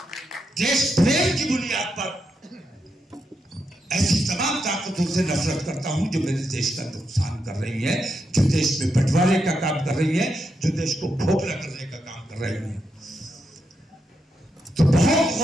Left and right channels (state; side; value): normal; both; correlation 0.83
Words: देश प्रेम की बुनियाद पर ऐसी तमाम ताकतों से नफरत करता हूं जो मेरे देश का नुकसान कर रही है, जो देश में बंटवारे का काम कर रही है, जो देश को खोखला करने का काम कर रही है। तो बहुत